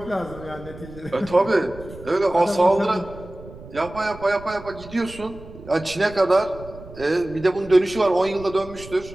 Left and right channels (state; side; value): noise; right; rumble, 17 dB below the sound